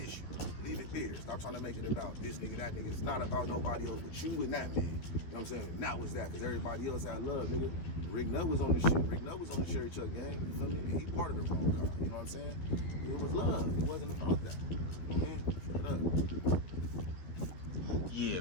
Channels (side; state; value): right; late; 12 ms